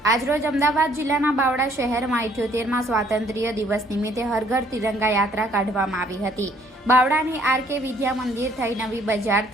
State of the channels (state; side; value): normal; both; correlation 0.62